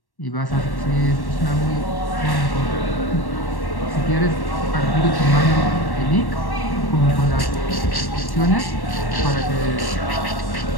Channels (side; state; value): right; late; 1.1 ms